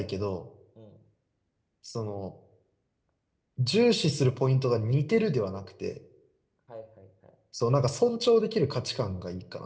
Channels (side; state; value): both; identical; correlation 1.00